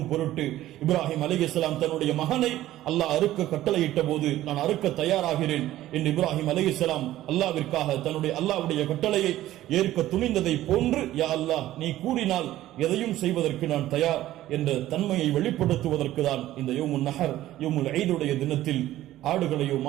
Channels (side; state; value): left; quieter; 14.4 dB